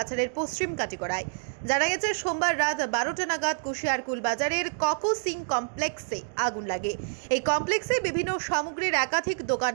পশ্চিম কাটিগড়ায়। জানা গেছে সোমবার রাত 12টা নাগাদ কুশিয়ারকুল বাজারের ককো সিং কমপ্লেক্সে আগুন লাগে। এই কমপ্লেক্সে বিভিন্ন সামগ্রীর একাধিক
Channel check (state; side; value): silent; left; digital silence